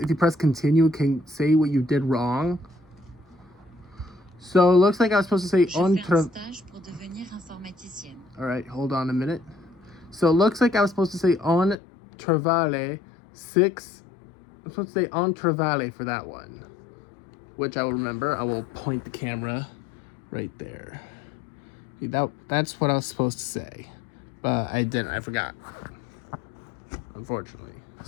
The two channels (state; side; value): drops out; right; at 11.8 s